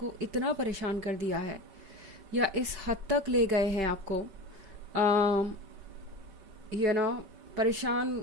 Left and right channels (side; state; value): left; late; 5.2 ms